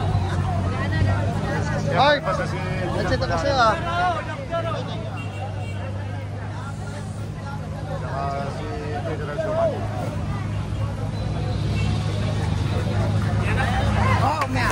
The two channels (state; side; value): identical; both; correlation 1.00